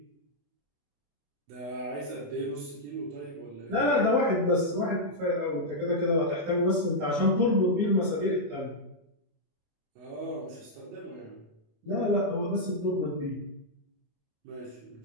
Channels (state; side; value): late; left; 27 ms